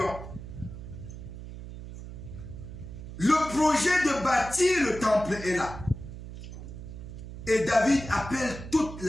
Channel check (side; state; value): right; noise; hum, 11 dB below the sound